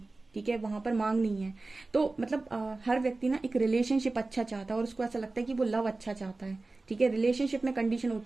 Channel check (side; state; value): left; quieter; 3.3 dB